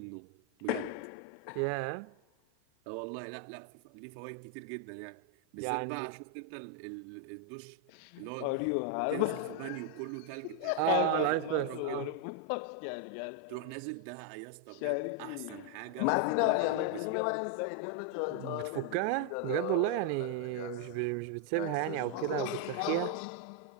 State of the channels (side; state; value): both; different; correlation 0.01